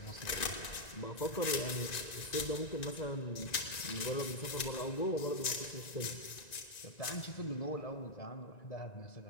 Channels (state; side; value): late; right; 1.9 ms